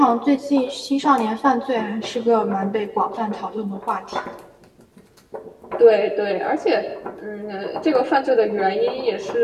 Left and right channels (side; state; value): both; identical; correlation 1.00